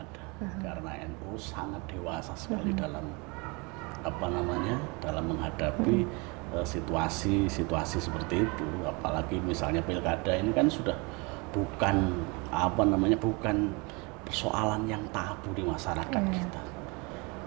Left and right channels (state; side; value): quieter; left; 29.0 dB